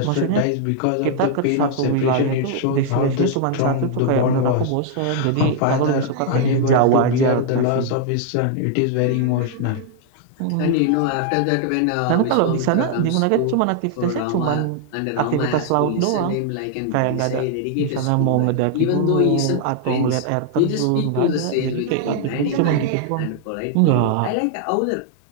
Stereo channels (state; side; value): different; both; correlation 0.00